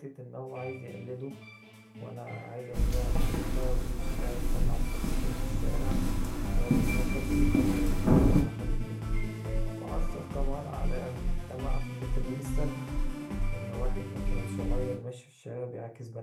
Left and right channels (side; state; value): both; identical; correlation 1.00